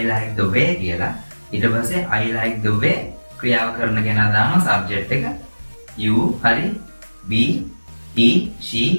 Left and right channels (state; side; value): inverted; both; correlation -1.00